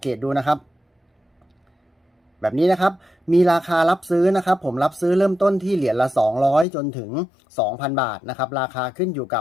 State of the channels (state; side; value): drops out; right; at 6.7 s